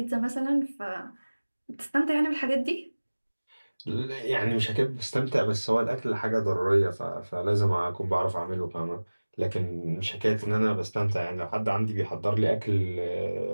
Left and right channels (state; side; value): inverted; both; correlation -1.00